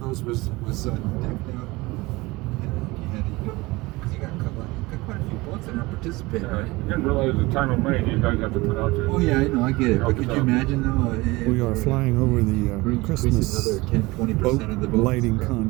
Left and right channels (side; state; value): left; quieter; 21.8 dB